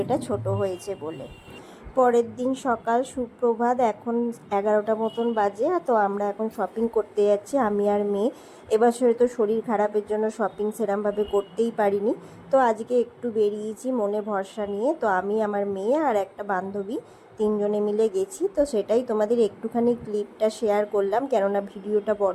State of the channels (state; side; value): identical; both; correlation 1.00